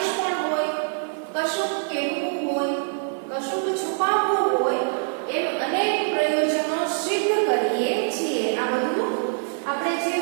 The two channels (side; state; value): left; silent; digital silence